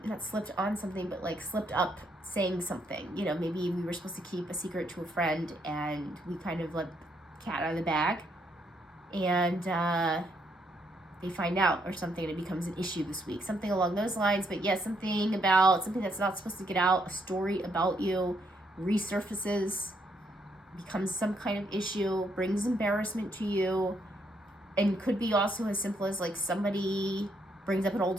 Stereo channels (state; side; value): normal; both; correlation 0.74